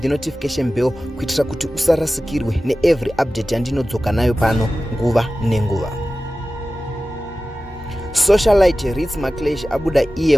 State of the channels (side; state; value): both; normal; correlation 0.95